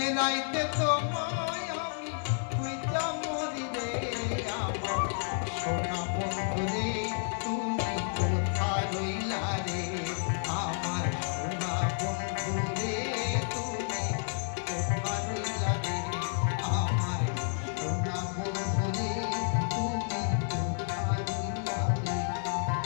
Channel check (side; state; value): right; silent; 57 dB below the other